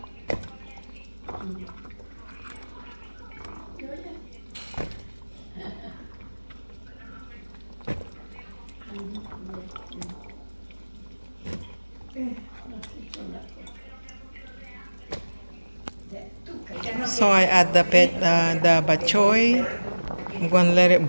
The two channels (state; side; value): inverted; both; correlation -1.00